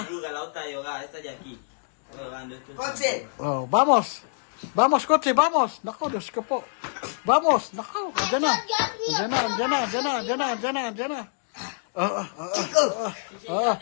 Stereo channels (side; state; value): right; silent; digital silence